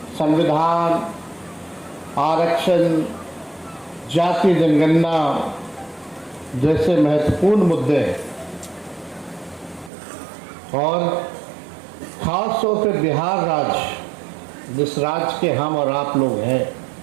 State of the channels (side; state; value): left; drops out; at 9.9 s